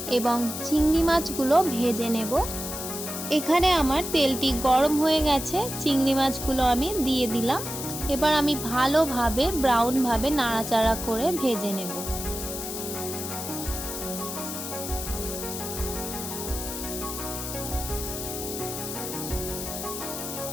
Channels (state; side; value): noise; left; hiss, 6 dB below the sound